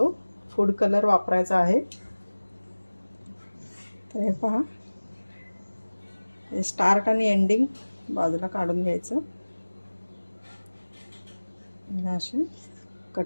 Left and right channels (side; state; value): both; inverted; correlation -1.00